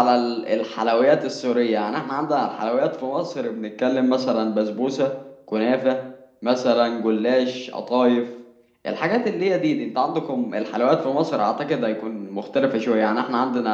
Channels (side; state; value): both; identical; correlation 1.00